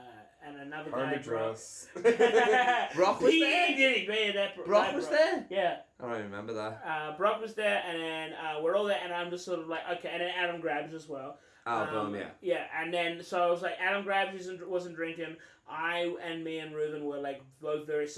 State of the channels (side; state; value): both; identical; correlation 1.00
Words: another guy. Brock was there? He did. Brock was there? Yeah. I don't remember that. Brock was there, and then we're all there, and I'm just sort of like, okay, and then Adam grabs as well. Yeah. Yeah, and then, so I was like, Adam Grabs wasn't drinking. Me and Reuven were like both very